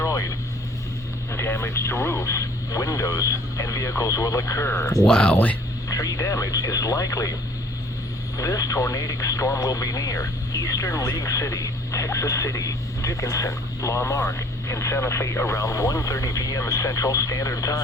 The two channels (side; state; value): both; normal; correlation 0.55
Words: Damage to roofs, windows, and vehicles will occur. Wow. Tree damage is likely. This tornadic storm will be near Eastern League City, Texas City, Dickinson, La Marque, and Santa Fe around 1:30 p.m. Central Standard